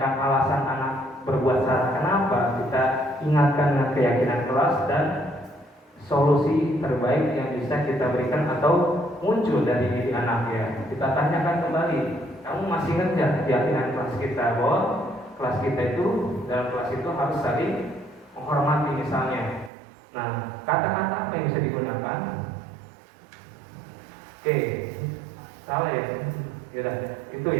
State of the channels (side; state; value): left; drops out; at 19.7 s